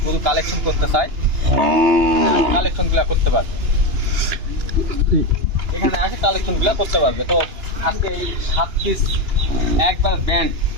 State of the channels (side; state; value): left; late; 2.9 ms